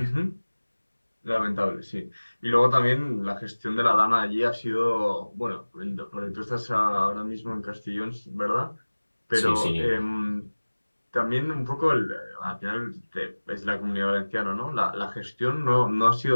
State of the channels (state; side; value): inverted; both; correlation -1.00